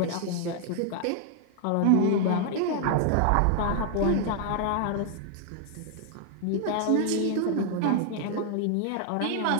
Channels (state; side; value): different; both; correlation 0.00